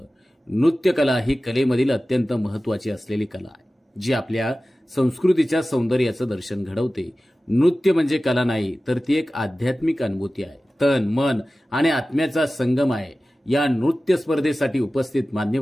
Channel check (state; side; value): normal; both; correlation 0.96